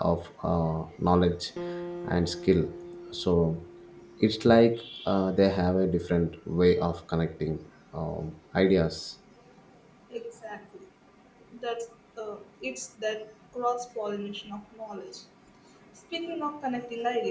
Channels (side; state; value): both; identical; correlation 1.00